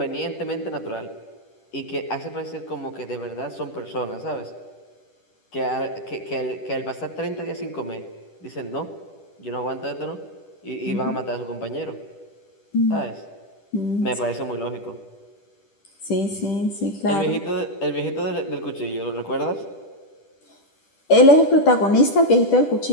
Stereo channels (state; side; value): late; right; 10 ms